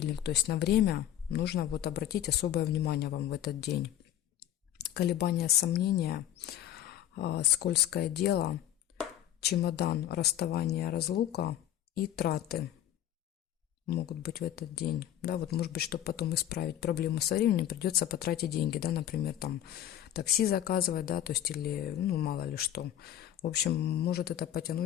то есть на время нужно вот обратить особое внимание вам в этот день. Колебания, сомнения, скользкое дело, чемодан, расставание, разлука и траты могут быть в этот день. Да, вот может быть, чтобы потом исправить проблему со временем, придется потратить деньги, да, например, там такси заказывать, да, то есть или, ну, мало ли что. В общем, может это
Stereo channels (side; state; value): right; quieter; 11.7 dB